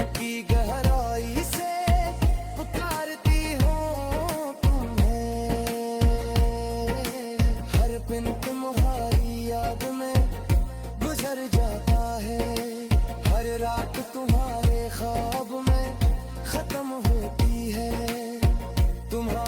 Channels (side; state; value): both; identical; correlation 1.00